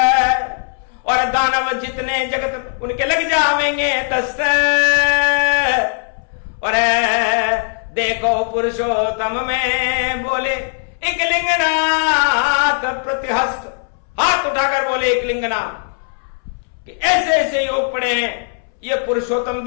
और दानव जितने जगत उनके लग जावेंगे दस्त। और देखो पुरुषोत्तम में बोले एक लिंगनाथ प्रतिहस्त, हाथ उठाकर बोले एक लिंगनाथ कि ऐसे ऐसे योग पड़े हैं। ये पुरुषोत्तम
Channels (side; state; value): right; silent; 66 dB below the other